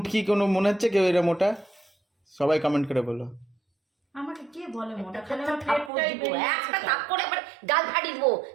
কোনো মনে হচ্ছে কেউ এরা মোটা? সবাই কমেন্ট করে বলো। আমাকে কে বলে মোটা? খালি একটা আমার থাপ্পড় পেটটাই দিব, বেরিয়ে একটা গেছে। থাপ্পড় এবার গাল ফাটিয়ে দিব।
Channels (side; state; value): left; drops out; at 5.9 s